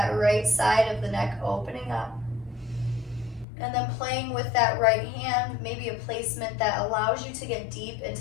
right side of the neck opening up. And then playing with that right hand, maybe a placement that allows you to get deep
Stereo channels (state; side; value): drops out; right; at 3.5 s